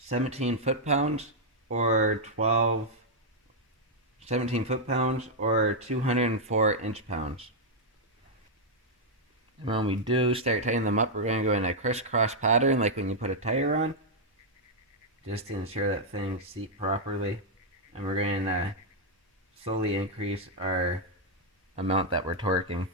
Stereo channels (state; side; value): normal; both; correlation -0.04